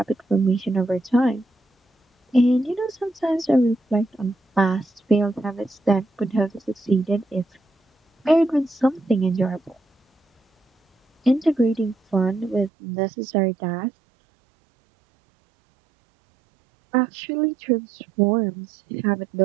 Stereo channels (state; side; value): drops out; left; at 12.7 s